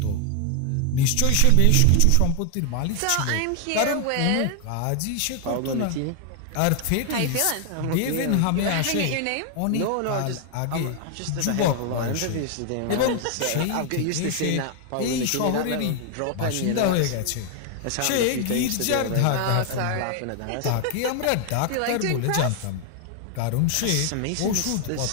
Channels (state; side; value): different; both; correlation 0.00